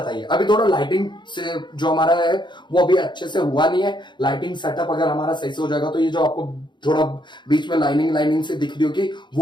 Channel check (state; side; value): late; right; 0.22 ms